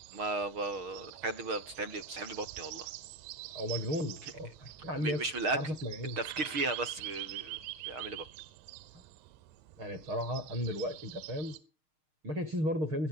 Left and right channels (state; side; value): late; left; 6.5 ms